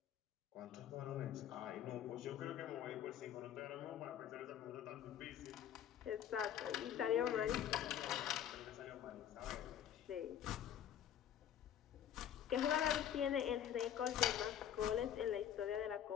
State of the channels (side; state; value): right; quieter; 10.0 dB